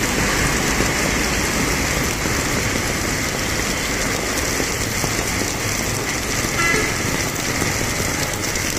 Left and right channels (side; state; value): both; identical; correlation 1.00